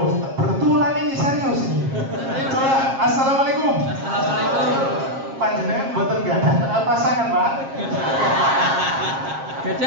betulan ini serius ini. Coba assalamualaikum. Assalamualaikum. Panjenengan mboten gadah pasangan, Pak.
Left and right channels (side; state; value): left; late; 7.5 ms